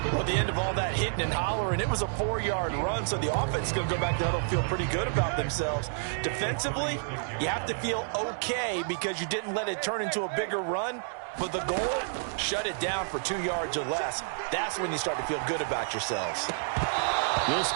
Well, at the end of all that hitting and hollering, it was a 4-yard run, so the offense is going to go back down and feel pretty good about themselves. Defensively, you have to feel okay because you didn't let it turn into a bigger run. But the goal, shut it down for 2 yards or less. That's when you start to feel good about yourselves. This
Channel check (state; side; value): silent; left; digital silence